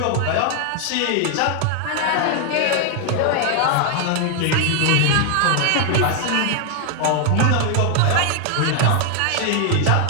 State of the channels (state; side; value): different; both; correlation 0.00